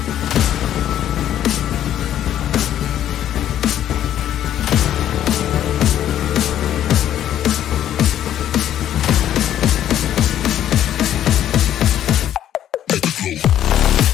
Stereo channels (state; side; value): quieter; right; 11.2 dB